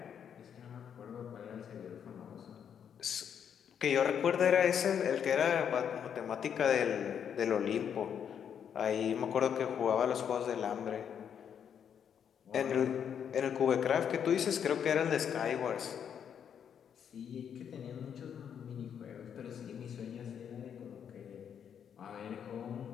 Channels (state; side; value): quieter; right; 8.2 dB